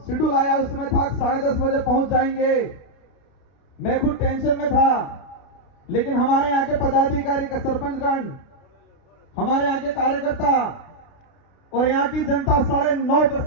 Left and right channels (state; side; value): late; right; 32 ms